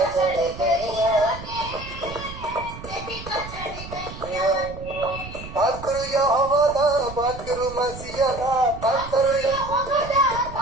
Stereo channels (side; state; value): right; noise; rumble, 12 dB below the sound